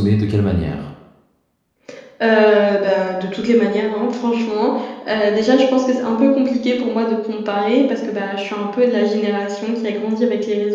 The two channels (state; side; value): identical; both; correlation 1.00